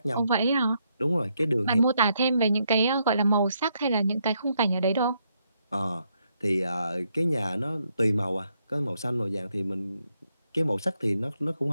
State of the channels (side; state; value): both; inverted; correlation -0.77